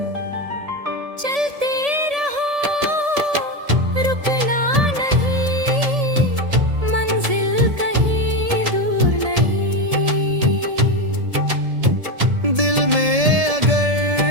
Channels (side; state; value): left; late; 1.7 ms